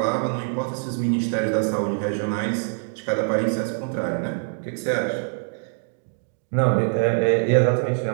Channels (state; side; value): silent; left; 63 dB below the other